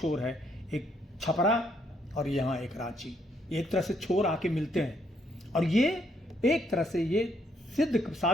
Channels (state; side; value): normal; both; correlation 0.72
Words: है, एक छपरा और यहाँ एक रांची। एक तरह से छोर आके मिलते हैं और ये एक तरह से ये